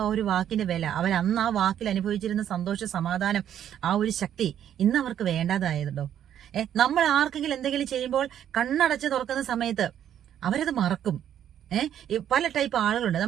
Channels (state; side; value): quieter; left; 10.2 dB